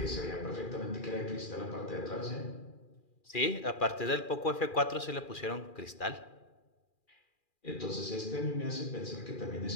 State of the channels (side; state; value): right; late; 2.4 ms